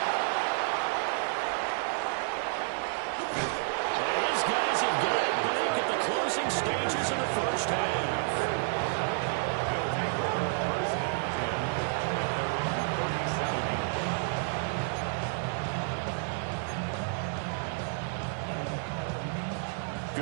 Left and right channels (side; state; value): left; silent; 58 dB below the other